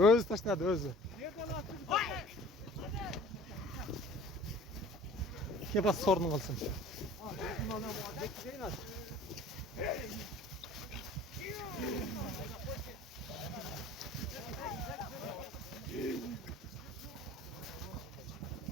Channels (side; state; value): both; normal; correlation 0.47